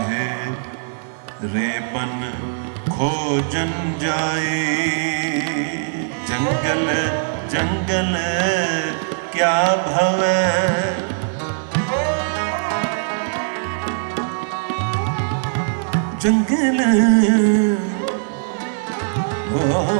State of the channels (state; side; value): silent; left; 58 dB below the other